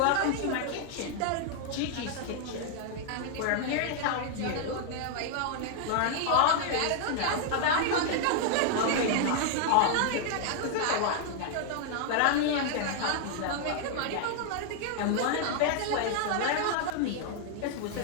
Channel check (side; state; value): both; different; correlation 0.00